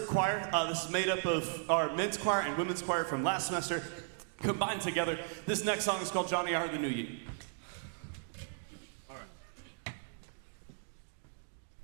choir. This is made up of our men's choir and women's choir from last semester combined together. This next song is called Johnny I Hardly Knew You. All right.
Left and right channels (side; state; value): left; silent; digital silence